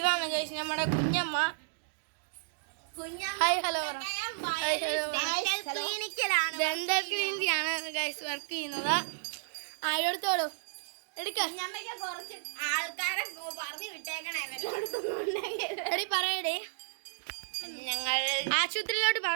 ഗൈസ് നമ്മുടെ കുഞ്ഞമ്മ. Hi hello. ഡെന്റൽ ക്ലിനിക്കിലാണ് ഗൈസ് വർക്ക് ചെയ്യുന്നത്. എടുത്തോളൂ, എടുക്ക. കുറച്ച് ആൾക്കാരെ പറഞ്ഞു വിട്ടേക്കണേ. എടി പറയടേ. ഞങ്ങൾ ആശുപത്രിയിലോട്ട്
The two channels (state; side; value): silent; left; digital silence